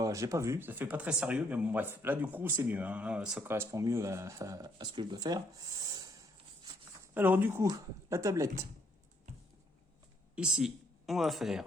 vu, ça fait pas très sérieux, mais bon bref, là du coup c'est mieux, hein. Là, ça correspond mieux à ce que je dois faire. Alors du coup, la tablette, ici, on va faire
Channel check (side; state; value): both; normal; correlation 0.69